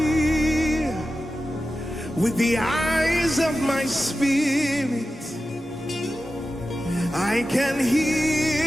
with the eyes of my spirit. I can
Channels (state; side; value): normal; both; correlation 0.93